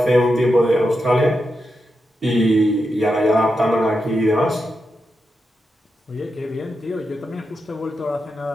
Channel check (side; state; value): both; normal; correlation 0.87